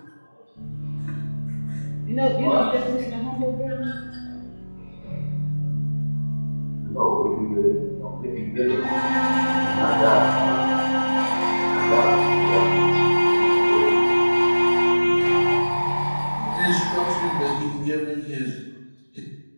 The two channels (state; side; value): inverted; both; correlation -1.00